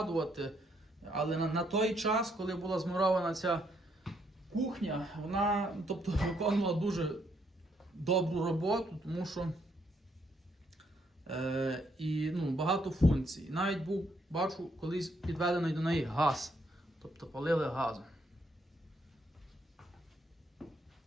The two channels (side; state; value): both; normal; correlation 0.73